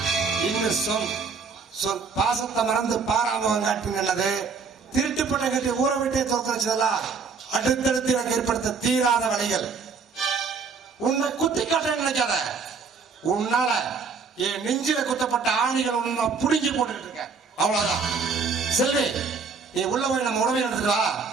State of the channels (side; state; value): left; quieter; 5.2 dB